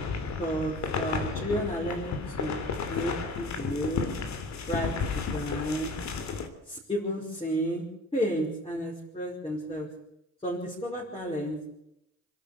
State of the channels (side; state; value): both; normal; correlation 0.44